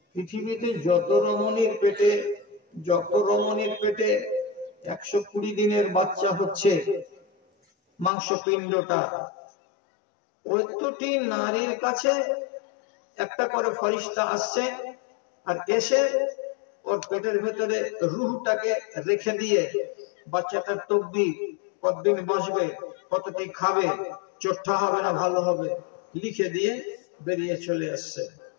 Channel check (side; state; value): right; drops out; at 8.1 s